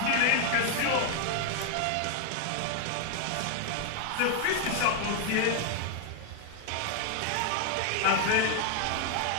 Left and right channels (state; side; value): different; both; correlation 0.00